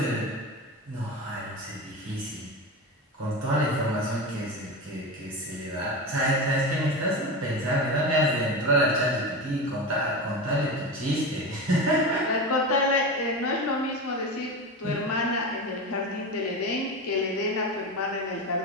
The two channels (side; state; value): both; normal; correlation 0.23